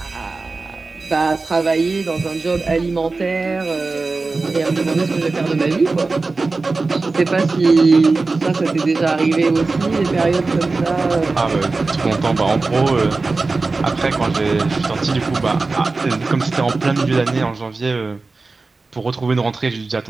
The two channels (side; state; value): left; quieter; 3.7 dB